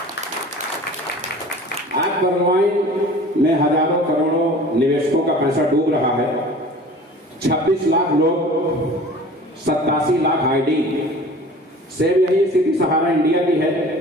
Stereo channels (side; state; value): both; normal; correlation 0.43